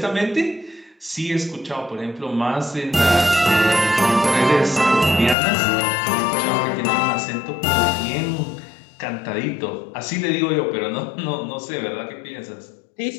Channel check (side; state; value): right; drops out; at 5.4 s